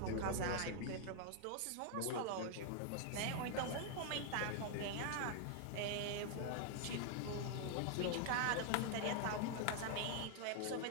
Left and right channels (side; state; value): both; different; correlation 0.00